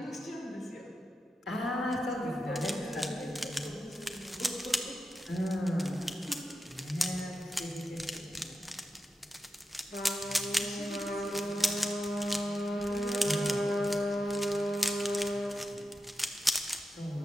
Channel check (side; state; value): both; normal; correlation 0.89